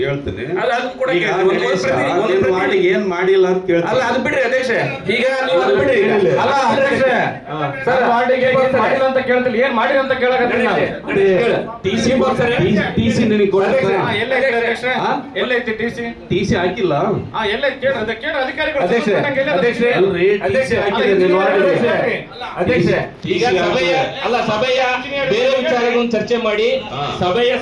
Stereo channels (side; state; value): both; identical; correlation 1.00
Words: ಅದನ್ನ ಕೂಡ ಏನ್ ಮಾಡಿಲ್ಲ ಅಂತ ಕೇಳ್ತೀನಿ. ಅಲ್ಲ, ಅದು ಬಿಡ್ರಿ ಅಧ್ಯಕ್ಷ. ಈಗ ನೀವು ಅದು ಬಿಡ್ರಿ. ಅಲ್ಲ ಅಧ್ಯಕ್ಷ, ಸರ್ ವಾರ್ಡಿಗೆ ಏನ್ ಮಾಡಿಲ್ಲ ಅಂತ ಕೇಳ್ತಿಲ್ಲ, ಏನ್ ಮಾಡಿಲ್ಲ ಅಂತ ಕೇಳಕತ್ತೀನಿ ನಾನು. ಟಿಸಿ ನಿನಗೆ ಎಲ್ಲೈತಿ ಅಧ್ಯಕ್ಷ? ಎಲ್ಲೈತಿ ಟಿಸಿ? ಟಿಸಿ ಹಾಕಿಲ್ಲ. ಎಲ್ಲೈತಿ ಕೇಳ್ರಿ ಅಧಿಕಾರಿಗಳು. ಅಧ್ಯಕ್ಷ, ಈಗ ಸಭೆಯ ಬೇರೆ ವಿಚಾರಗಳನ್ನು ಚರ್ಚೆ ಮಾಡಿ ಸಭೆಯ